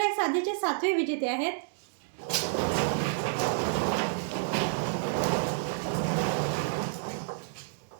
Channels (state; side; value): silent; left; digital silence